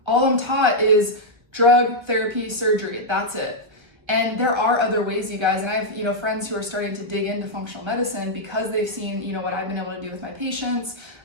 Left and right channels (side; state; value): left; late; 1.5 ms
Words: All I'm taught is drug, therapy, surgery. That's it. And there are other ways, you guys. And I have, friends who are starting to dig into functional medicine because they've seen, what I've been able to do with my patients.